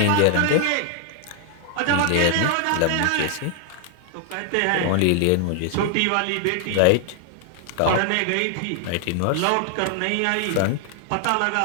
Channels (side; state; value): both; different; correlation 0.00